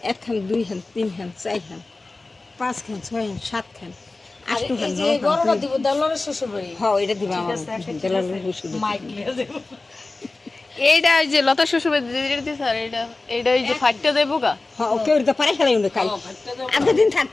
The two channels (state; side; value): quieter; right; 3.3 dB